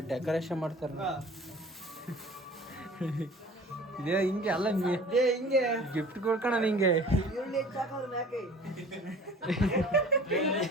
ಡೆಕೋರೇಷನ್ ಮಾಡ್ತಾರ. ಇದೇ ಹಿಂಗೆ ಅಲ್ಲ ಹಿಂಗೆ ಗಿಫ್ಟ್ ಕೊಡ್ಕಣ ಹಿಂಗೆ.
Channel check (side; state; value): both; normal; correlation 0.45